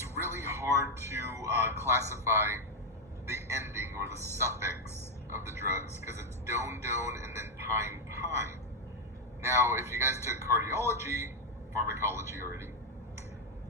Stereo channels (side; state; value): both; normal; correlation 0.03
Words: really hard to classify the ending or the suffix of the drugs because it's don and then pine. Now, if you guys took cardiology, pharmacology already,